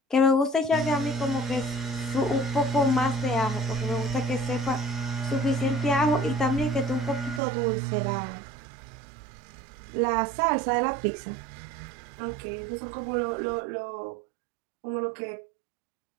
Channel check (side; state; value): left; drops out; at 7.4 s